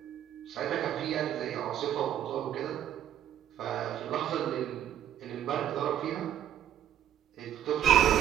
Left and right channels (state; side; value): quieter; left; 10.9 dB